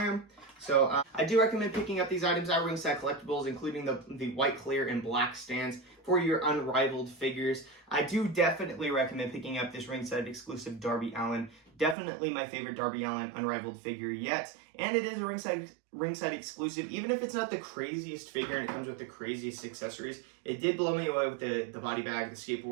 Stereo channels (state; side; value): drops out; left; at 12.0 s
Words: am. So I do recommend picking up these items at Ringside Collectibles, including the white, clear, and black stands for your unrivaled figures. I do definitely recommend picking up this Ringside exclusive Darby Allin. Definitely my favorite Darby Allin unrivaled figure yet. And it is a Ringside exclusive. Even if it's not the craziest figure and it comes with the craziest accessories, it did blow me away with the body bag, the